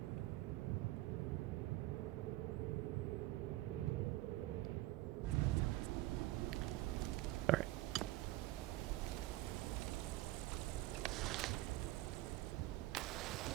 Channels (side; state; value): left; quieter; 17.4 dB